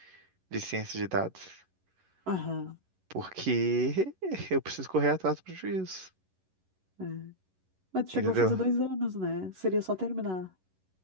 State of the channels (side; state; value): left; late; 11 ms